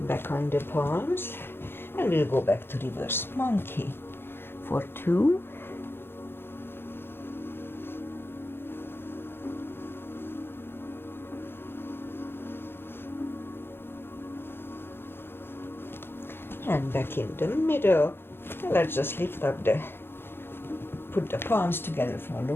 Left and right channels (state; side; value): late; right; 0.11 ms